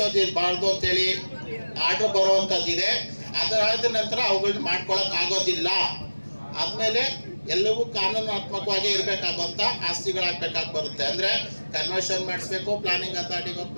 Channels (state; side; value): inverted; both; correlation -1.00